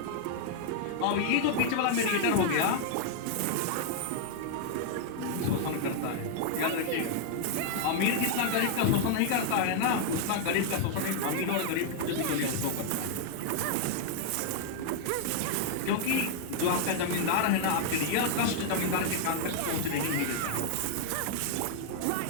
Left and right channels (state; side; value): different; both; correlation 0.00